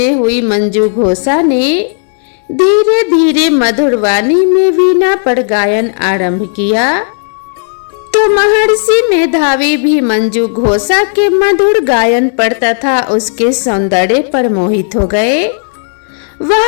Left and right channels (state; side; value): silent; right; digital silence